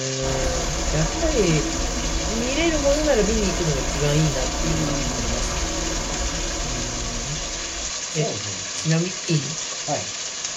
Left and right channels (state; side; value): identical; both; correlation 1.00